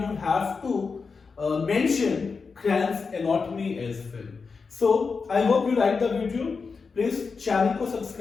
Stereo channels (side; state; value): right; quieter; 4.9 dB